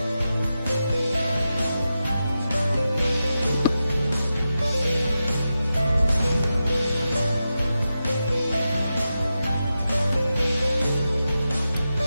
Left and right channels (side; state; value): both; inverted; correlation -0.90